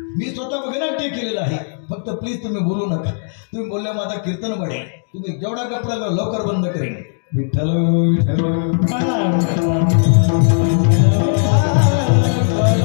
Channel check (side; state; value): right; silent; digital silence